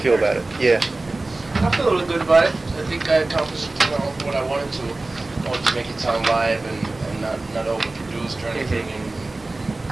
about it? Yeah. I feel really good about it. I think I accomplished, what I wanted to. I wanted to make it sound live and not overproduced or anything, and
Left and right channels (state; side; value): quieter; left; 3.1 dB